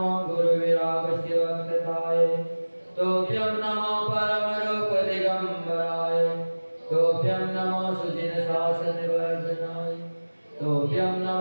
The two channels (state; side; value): inverted; both; correlation -1.00